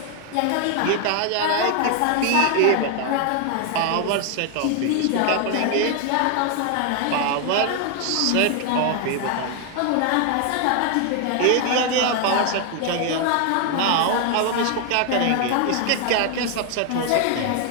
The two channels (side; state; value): both; different; correlation 0.01